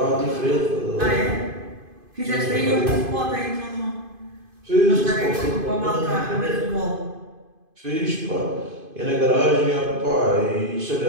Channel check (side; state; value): left; late; 2.5 ms